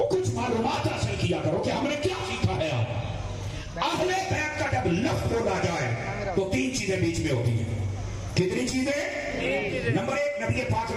کچھ معلومات حاصل کیا کرو کہ ہم نے کیا سیکھا ہے۔ آپ اہل بیت کا جب لفظ بولا جائے تو تین چیزیں بیچ میں ہوتی ہیں۔ کتنی چیزیں؟ نمبر ایک، نبی پاک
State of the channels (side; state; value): both; identical; correlation 1.00